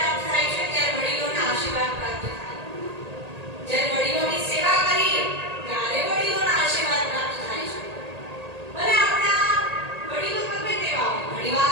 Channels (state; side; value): late; left; 1.8 ms